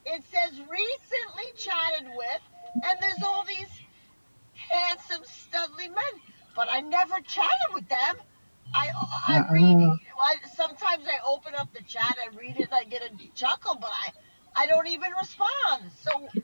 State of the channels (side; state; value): both; inverted; correlation -1.00